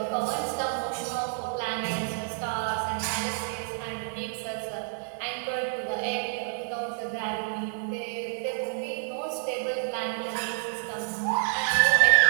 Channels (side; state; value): left; silent; 59 dB below the other